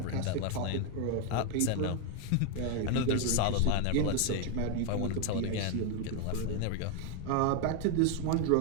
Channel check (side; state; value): both; different; correlation 0.01